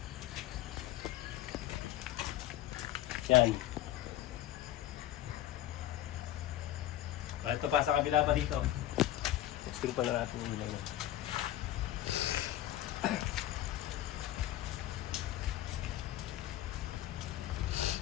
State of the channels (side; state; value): right; quieter; 13.4 dB